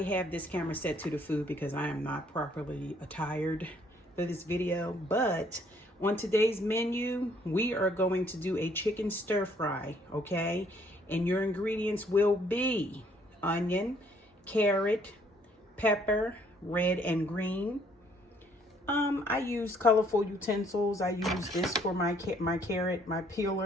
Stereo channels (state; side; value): normal; both; correlation 0.64